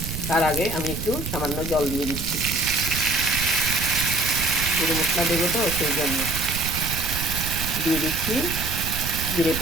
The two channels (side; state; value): right; noise; rumble, 6 dB below the sound